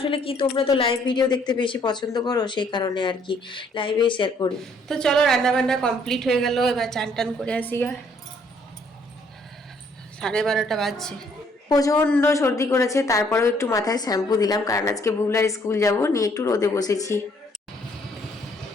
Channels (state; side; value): normal; both; correlation 0.65